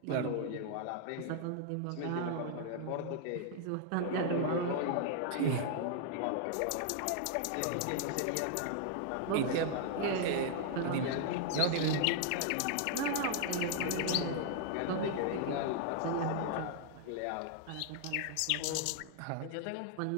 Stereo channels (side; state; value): both; different; correlation -0.01